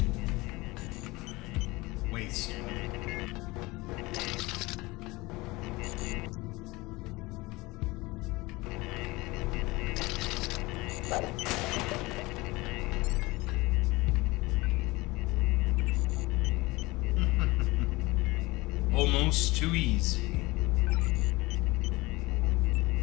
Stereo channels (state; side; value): quieter; right; 22.1 dB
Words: Waste. Almost too easy.